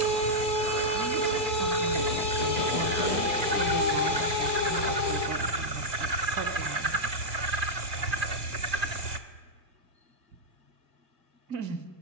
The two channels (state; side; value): late; left; 2.1 ms